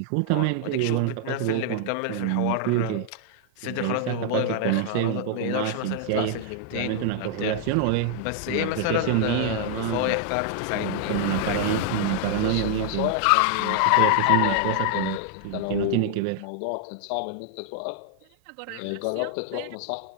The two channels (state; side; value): different; both; correlation 0.00